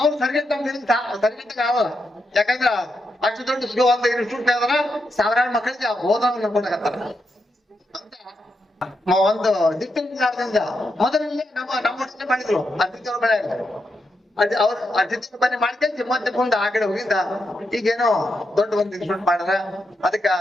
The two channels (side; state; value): both; normal; correlation 0.84